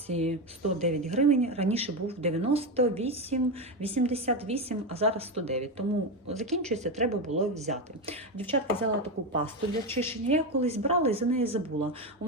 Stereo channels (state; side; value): normal; both; correlation 0.13